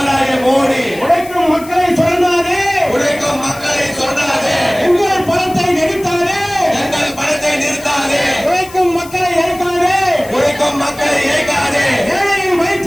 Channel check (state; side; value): noise; left; hiss, 18 dB below the sound